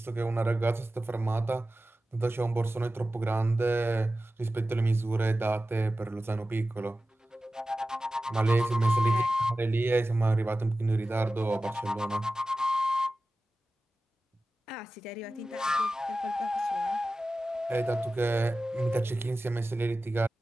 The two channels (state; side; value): normal; both; correlation 0.95